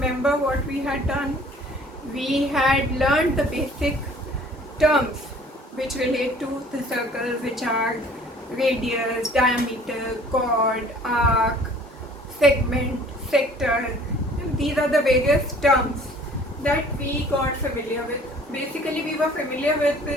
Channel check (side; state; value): both; normal; correlation 0.52